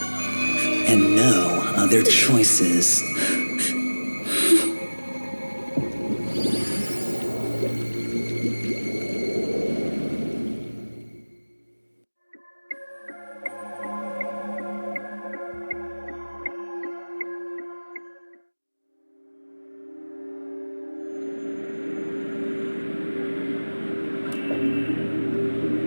And no other choices.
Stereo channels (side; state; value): both; inverted; correlation -1.00